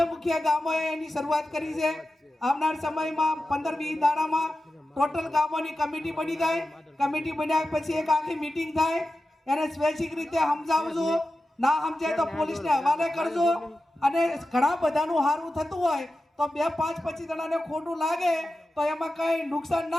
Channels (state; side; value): normal; both; correlation 0.93